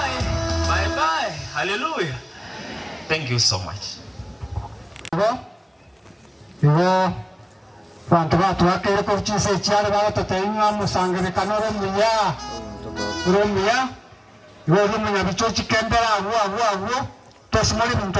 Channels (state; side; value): identical; both; correlation 1.00